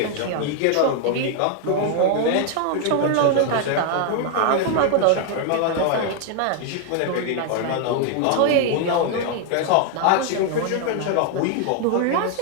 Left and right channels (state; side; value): different; both; correlation 0.00